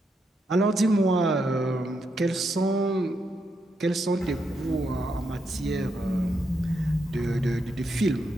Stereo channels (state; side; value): normal; both; correlation 0.81